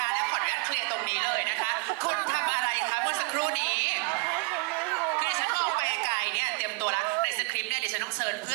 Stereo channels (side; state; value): left; quieter; 31.5 dB